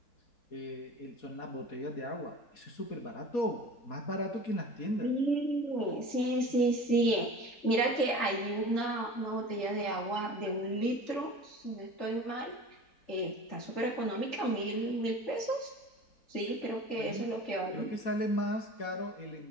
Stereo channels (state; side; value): late; right; 3.5 ms